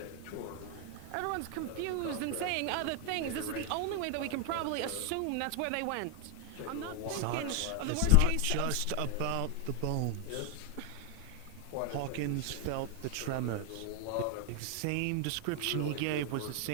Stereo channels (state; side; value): different; both; correlation 0.00